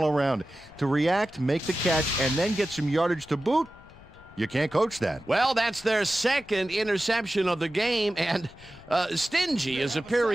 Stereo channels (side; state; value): left; noise; rumble, 22 dB below the sound